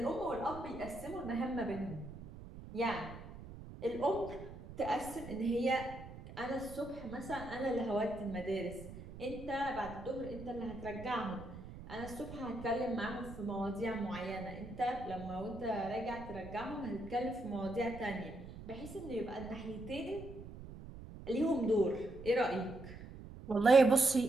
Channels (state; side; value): noise; right; rumble, 13 dB below the sound